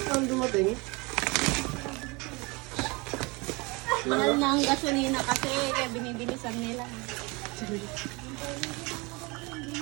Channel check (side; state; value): left; quieter; 26.9 dB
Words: Saan dumating? Mahal na ang gasolina kasi kaya binibilisan nila.